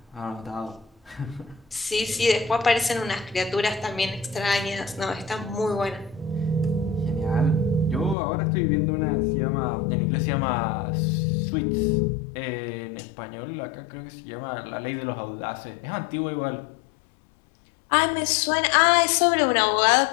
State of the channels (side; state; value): right; drops out; at 8.2 s